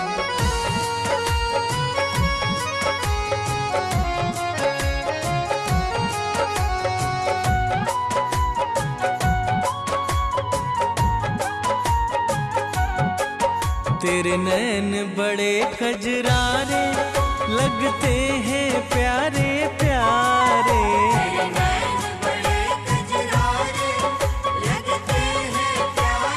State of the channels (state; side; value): identical; both; correlation 1.00